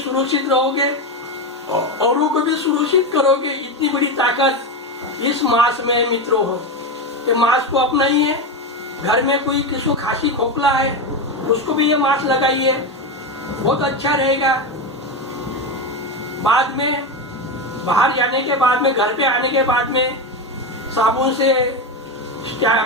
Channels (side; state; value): both; normal; correlation 0.15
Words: रहोगे, औरों को भी सुरक्षित करोगे। इतनी बड़ी ताकत इस मास्क में मित्रों हो। ये मास्क को अपनाइए। घर में कोई किसी को खांसी खोखला है उसको भी ये मास्क लगाइए, बहुत अच्छा रहेगा। बाद में बाहर जाने के बाद में, घर पे आने के बाद में साबुन से